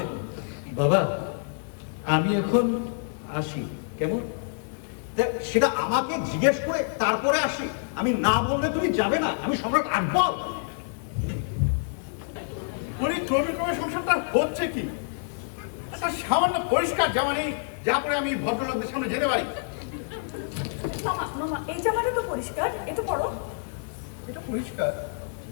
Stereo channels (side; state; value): right; silent; digital silence